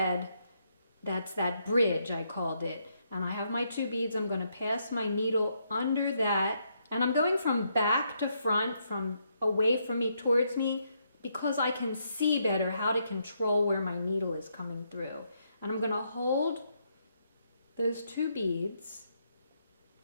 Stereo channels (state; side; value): inverted; both; correlation -0.76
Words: that's that bridge I called it. And I have my 2 beads. I'm going to pass my needle under that, and I'm going from back to front, from away from me towards me, because I can see better how to control where my needle is coming through. And I'm going to hold those 2 beads